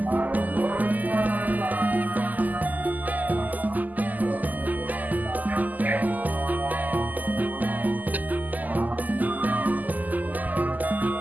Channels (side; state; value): left; late; 0.082 ms